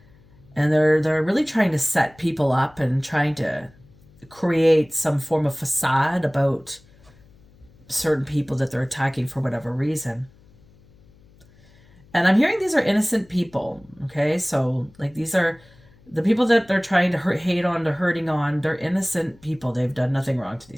And they're really trying to set people up and trying to create some form of facade about certain people that they're attacking for whatever reason. And I'm hearing these are innocent people, okay? So, like, these are the people that they're trying to hate on, they're hurting on. They're innocent people. They've done nothing wrong to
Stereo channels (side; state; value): left; noise; hum, 28 dB below the sound